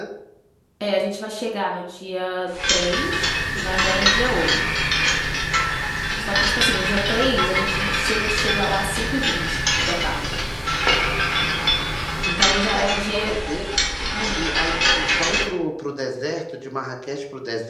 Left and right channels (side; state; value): both; identical; correlation 1.00